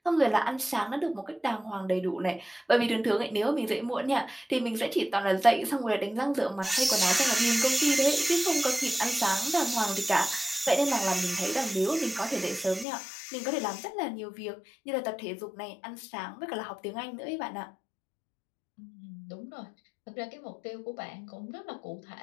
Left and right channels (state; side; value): drops out; right; at 12.9 s